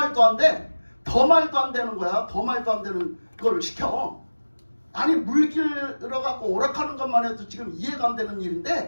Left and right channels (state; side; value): inverted; both; correlation -1.00